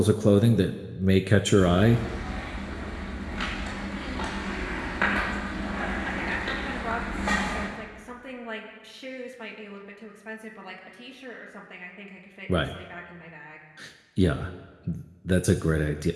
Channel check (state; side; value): identical; both; correlation 1.00